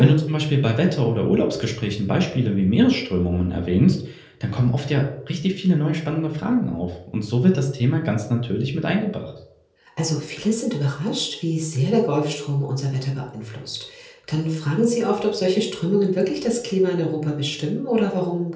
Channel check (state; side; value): identical; both; correlation 1.00